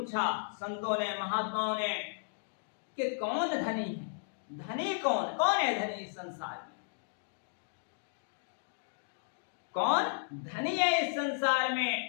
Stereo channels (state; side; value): silent; right; digital silence